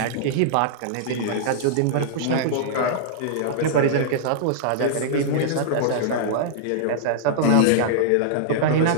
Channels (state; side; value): different; both; correlation -0.01